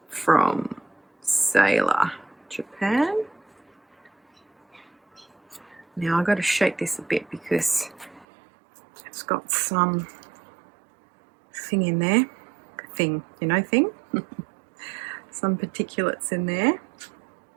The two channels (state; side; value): drops out; left; at 8.2 s